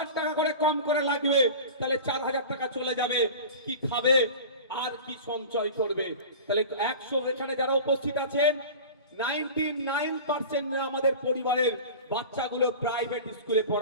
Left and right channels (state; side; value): inverted; both; correlation -0.35